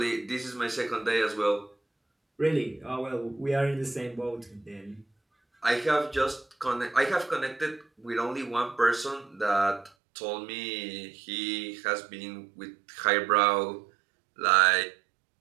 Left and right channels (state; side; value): drops out; left; at 9.9 s